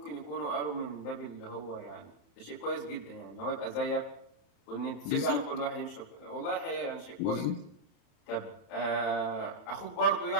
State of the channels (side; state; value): right; late; 40 ms